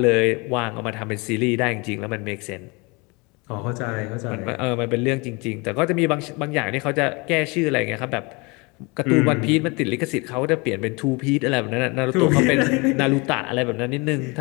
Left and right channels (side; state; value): right; quieter; 27.9 dB